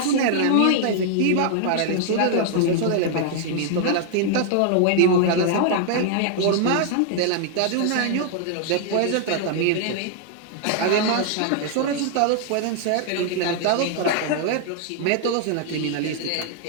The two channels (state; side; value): different; both; correlation 0.00